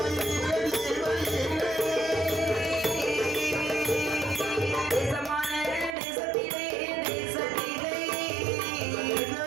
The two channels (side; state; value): left; drops out; at 6.0 s